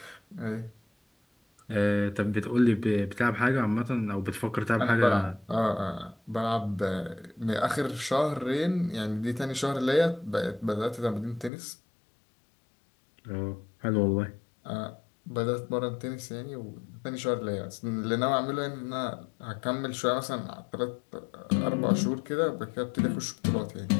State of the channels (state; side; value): drops out; right; at 11.5 s